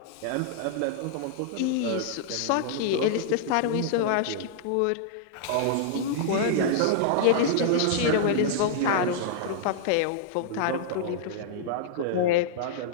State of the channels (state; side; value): different; both; correlation -0.01